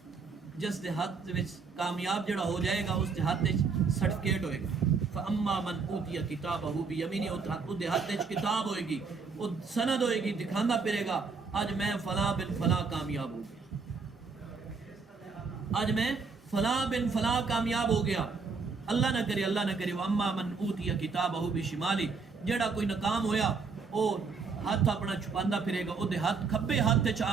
جس دے ہاتھ وچ کامیاب جڑا ہو جائے گا اس دے ہاتھ وچ سرٹیفکیٹ ہوئے گا. فاما من اوتی کتابہ بیمین اس دے ہاتھ وچ کتاب ہوئے گی وہ سند ہوئے گی دکھاندا پھرے گا آج میں فلاں بن فلاں کامیاب ہو گیا آج میں فلاں بن فلاں کامیاب ہو گیا. اللہ نہ کرے واما من اوتی کتابہ بشمالی جڑا کوئی ناکام ہویا او ہاتھ اپنا چھپاندا پھرے گا. او دے ہاتھ کھبے ہاتھ تے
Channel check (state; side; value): quieter; left; 4.8 dB